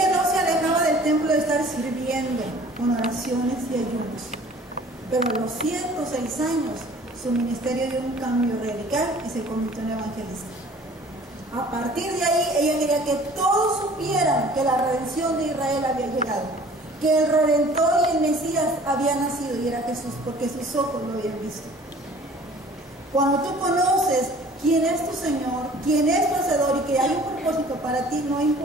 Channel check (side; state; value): both; normal; correlation 0.50